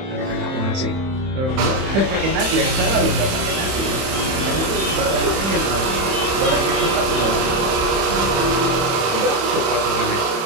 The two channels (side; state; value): left; late; 31 ms